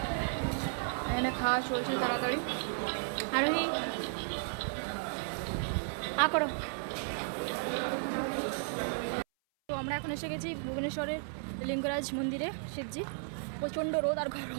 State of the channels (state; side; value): silent; left; 55 dB below the other